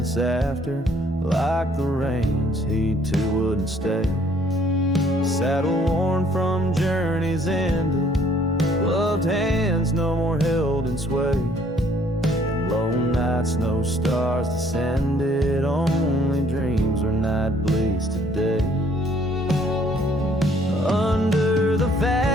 after, like the rains, he too wouldn't stay. Saddle worn from journeys ended, gloved hands no more held in sway. And lone nights, no stars descended, only dreams where night bleeds today. Under the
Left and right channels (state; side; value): normal; both; correlation 0.62